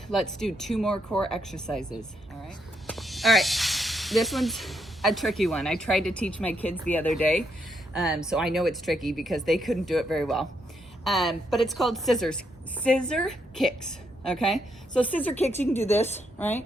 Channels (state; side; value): normal; both; correlation 0.77